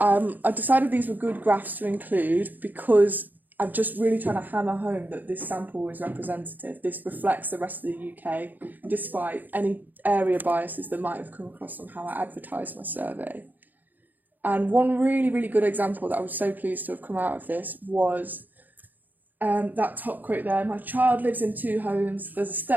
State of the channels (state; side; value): late; left; 0.085 ms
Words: decided these were good graphs to include because I'm just really trying to hammer home that this sample is representative. This reflects the rest of the UK, despite any area biases that might have come across on how I advertised my survey. And one really, really good example that I was so pleased to have come out of this was that top quote there, my child lives in 2 homes, there's a